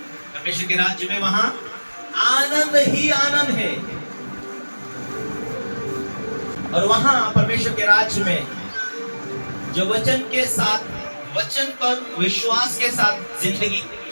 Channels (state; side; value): inverted; both; correlation -1.00